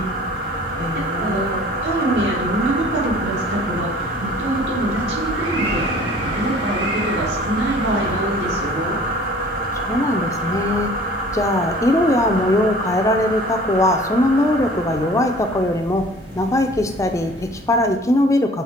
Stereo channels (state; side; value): normal; both; correlation 0.48